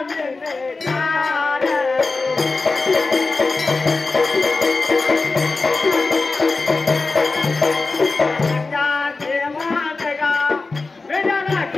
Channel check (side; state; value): right; quieter; 3.8 dB